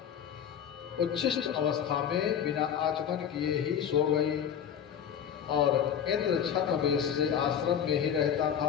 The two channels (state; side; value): quieter; right; 8.6 dB